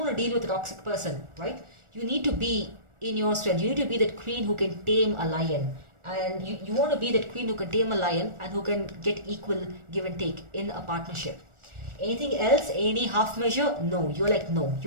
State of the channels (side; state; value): left; late; 1.4 ms